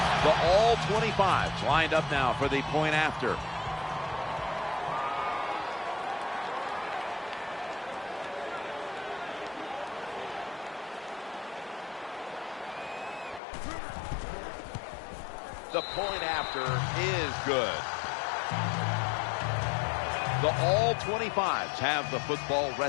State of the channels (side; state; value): right; drops out; at 13.4 s